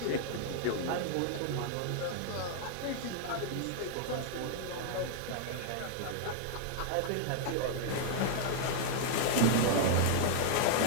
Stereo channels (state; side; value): different; both; correlation -0.01